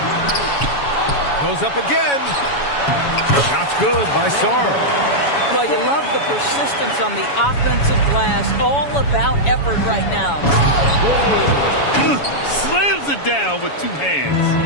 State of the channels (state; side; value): late; right; 7.1 ms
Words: Goes up again. Shot's good by Sarr. Well, you love the persistence on the offensive glass. All about effort right now. Slams it down with 2